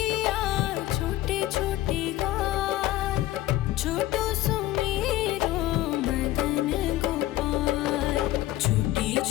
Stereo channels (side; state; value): right; quieter; 15.4 dB